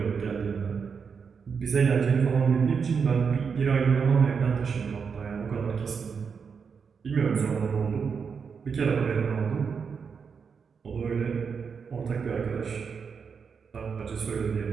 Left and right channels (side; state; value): left; quieter; 6.0 dB